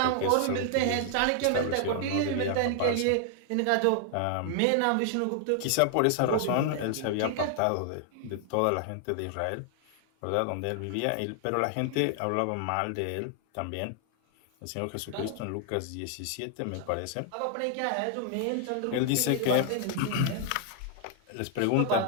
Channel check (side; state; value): both; different; correlation 0.00